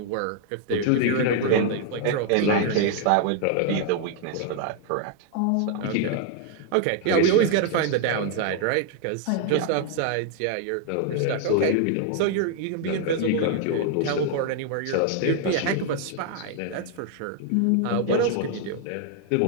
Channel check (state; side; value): different; both; correlation 0.00